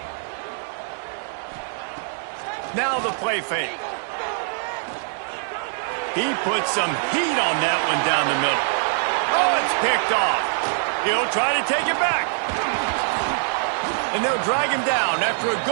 Now the play fake. He puts some heat on that one down the middle. Oh, it's picked off. He'll try to take it back. And they'll drag him down after a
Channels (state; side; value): silent; left; 63 dB below the other